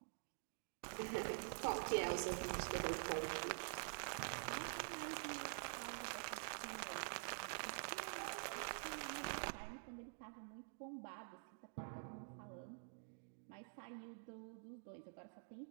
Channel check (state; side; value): silent; left; digital silence